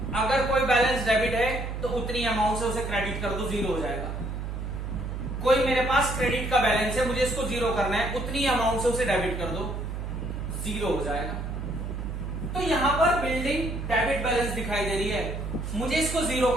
अगर कोई बैलेंस डेबिट है तो उतनी अमाउंट से उसे क्रेडिट कर दो, जीरो हो जाएगा। कोई मेरे पास क्रेडिट का बैलेंस है, मुझे इसको जीरो करना है, उतनी अमाउंट से उसे डेबिट कर दो, जीरो हो जाएगा। तो यहां पर बिल्डिंग डेबिट बैलेंस दिखाई दे रही है, मुझे इसको जीरो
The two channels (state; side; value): noise; right; hum, 5 dB below the sound